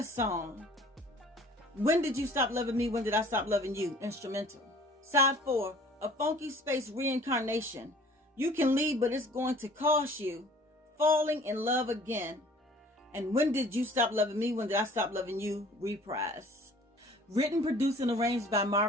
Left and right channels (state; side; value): normal; both; correlation 0.51